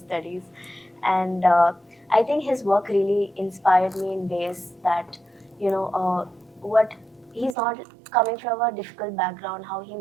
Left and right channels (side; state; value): left; drops out; at 7.6 s